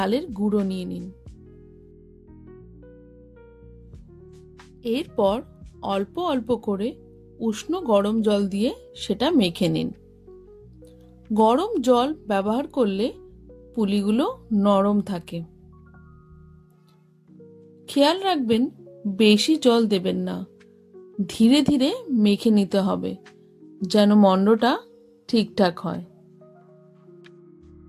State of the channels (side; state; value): both; identical; correlation 1.00